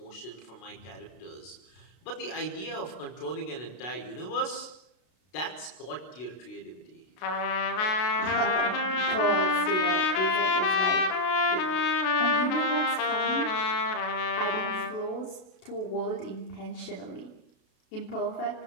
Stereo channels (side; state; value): right; late; 32 ms